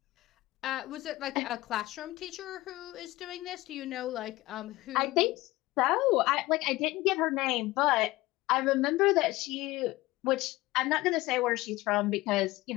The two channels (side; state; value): right; quieter; 19.0 dB